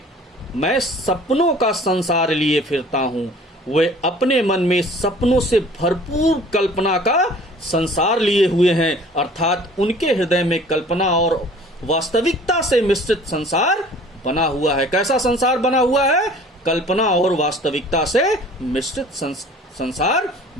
मैं सपनों का संसार लिए फिरता हूं। वे अपने मन में सपनों से भरपूर कल्पना का संसार लिए हुए हैं, अर्थात उनके हृदय में कल्पना और वास्तविकता से मिश्रित संसार बना हुआ है। कैसा संसार बना हुआ है? कल्पना और वास्तविकता से मिश्रित संसार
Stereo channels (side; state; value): both; normal; correlation 0.49